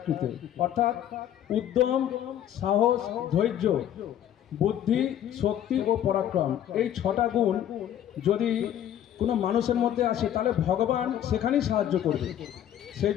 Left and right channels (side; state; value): right; quieter; 10.9 dB